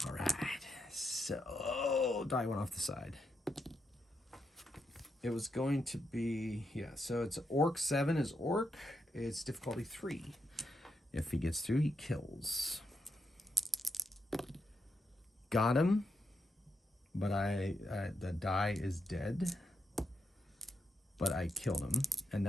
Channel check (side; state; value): both; normal; correlation 0.82